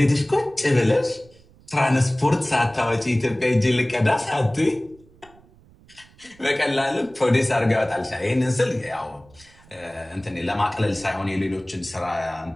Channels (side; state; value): right; noise; rumble, 27 dB below the sound